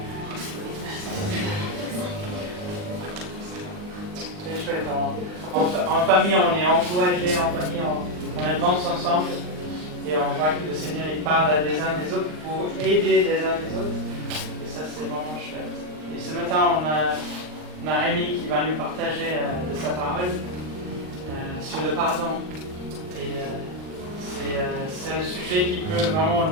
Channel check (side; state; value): left; late; 39 ms